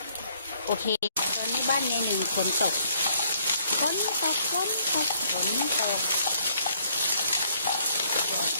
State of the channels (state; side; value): inverted; both; correlation -0.65